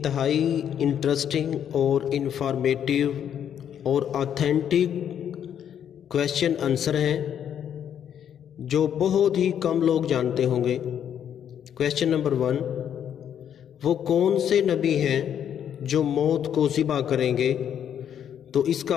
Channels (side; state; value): right; quieter; 9.2 dB